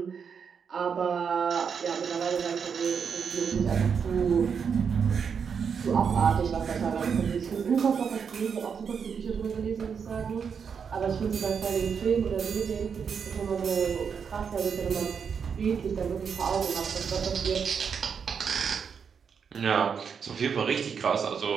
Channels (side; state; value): left; quieter; 6.6 dB